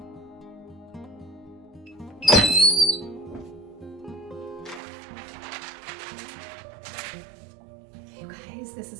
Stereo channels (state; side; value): drops out; left; at 4.8 s